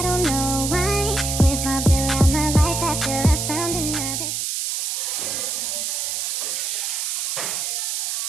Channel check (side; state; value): right; noise; hiss, 1 dB below the sound